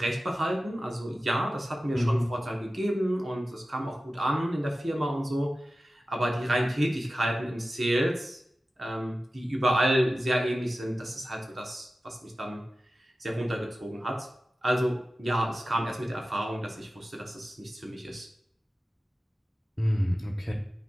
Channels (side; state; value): both; normal; correlation 0.95